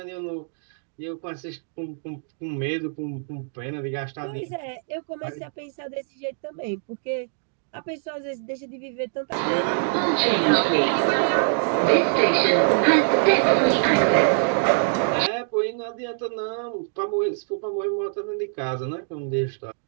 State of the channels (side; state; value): left; silent; digital silence